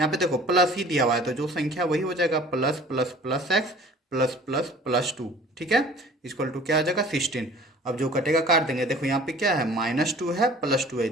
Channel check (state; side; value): normal; both; correlation 0.47